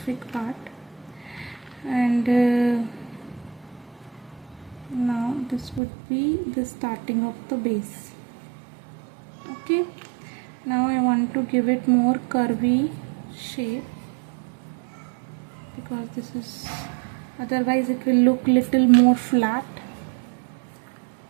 part, and now this would be the starting of the base. Okay, now I want to give it more curvy shape, because this is, otherwise it will look little more flat.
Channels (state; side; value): drops out; left; at 5.8 s